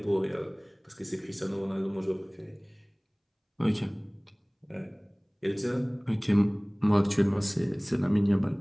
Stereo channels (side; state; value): both; identical; correlation 1.00